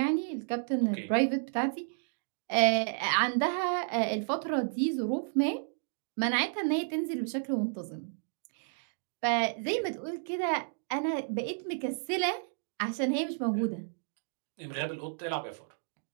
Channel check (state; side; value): silent; left; digital silence